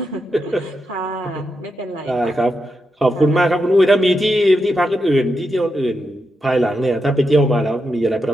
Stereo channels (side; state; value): both; normal; correlation 0.85